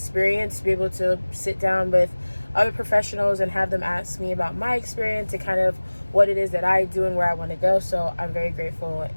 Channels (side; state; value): both; inverted; correlation -1.00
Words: to be able to sit down with other professionals and have them ask me about my experience and kind of what it is that I do and where I want to go. So I'm very grateful